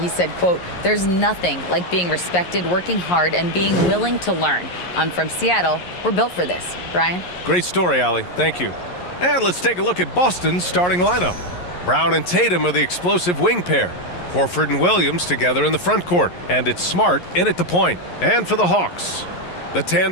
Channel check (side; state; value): right; late; 11 ms